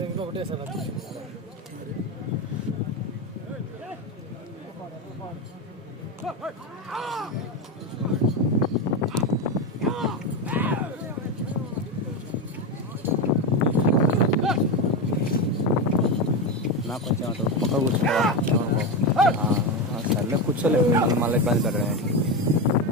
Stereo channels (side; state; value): both; normal; correlation 0.15